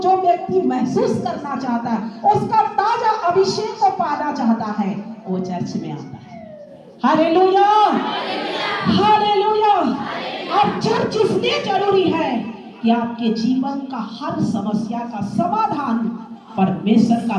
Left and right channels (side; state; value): both; identical; correlation 1.00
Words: व्यक्ति महसूस करना चाहता है, उसका ताजा अभिषेक को पाना चाहता है, वो चर्च में आता है। Hallelujah, hallelujah. और चर्च इसलिए जरूरी है कि आपके जीवन का हर समस्या का समाधान परमेश्वर